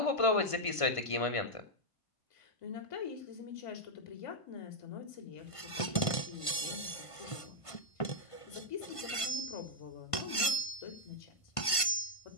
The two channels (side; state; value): right; late; 1.5 ms